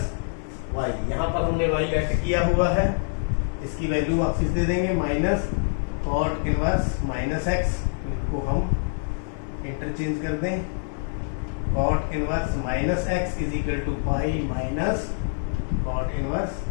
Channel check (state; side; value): silent; right; digital silence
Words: Y. यहाँ पर हमने y लेट किया हुआ है, इसकी वैल्यू वापस दे देंगे, minus cot inverse minus x। इसको हम इंटरचेंज कर दें, cot inverse minus x is equal to pi minus cot inverse